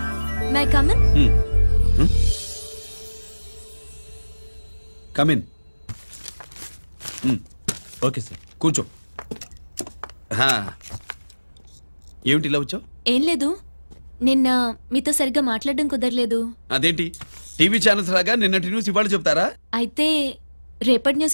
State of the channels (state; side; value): inverted; both; correlation -1.00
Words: May I come in? Come in. Okay sir, కూర్చో. ఏమిటి ఇలా వచ్చావు? ఏం లేదు, నిన్న మీతో సరిగ్గా మాట్లాడడం కుదరలేదు. అదేంటి, టీవీ ఛానల్స్ లాగా నిన్నటి న్యూస్ ఇవాళ చెప్తారా? అయితే రేపటి